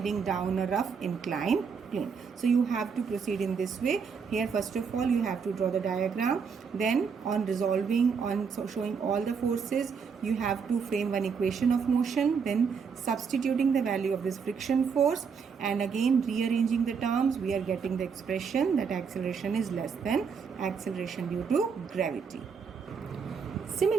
down a rough inclined plane. So you have to proceed in this way. Here first of all you have to draw the diagram, then on resolving, showing all the forces, you have to frame one equation of motion, then substituting the value of this friction force, and again rearranging the terms, we are getting the expression that acceleration is less than acceleration due to gravity.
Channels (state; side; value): quieter; left; 6.0 dB